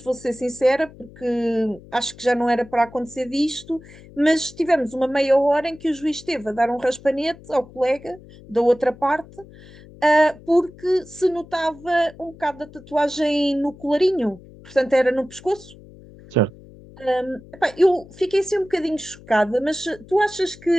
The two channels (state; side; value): noise; left; hum, 21 dB below the sound